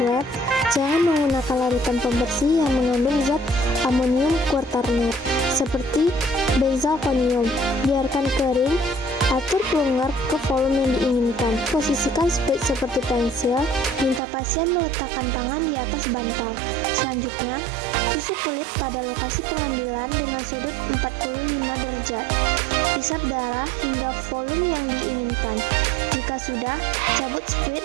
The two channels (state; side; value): drops out; left; at 14.2 s